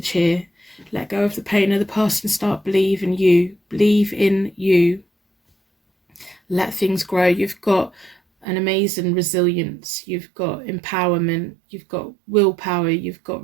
here. Let go of the pain of the past and start believing you. Believe in you. Let things grow. You've got an amazing resilience. You've got empowerment. You've got willpower. You've got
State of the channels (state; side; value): drops out; left; at 8.5 s